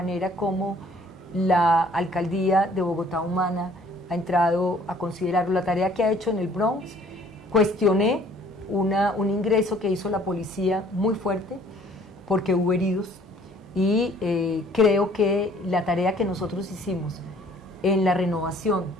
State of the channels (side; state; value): both; normal; correlation 0.57